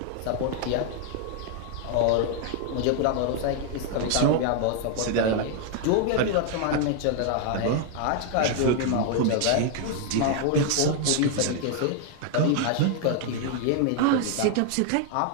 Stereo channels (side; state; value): both; different; correlation 0.00